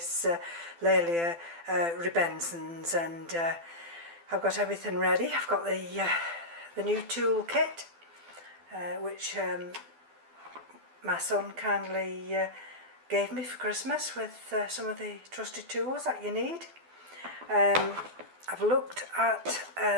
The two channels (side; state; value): left; late; 12 ms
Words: Laelia rubescens, and I've got everything ready. I've got the new tool kit which my son kindly gave me for Christmas with some of the trusted tools that you need. I've looked at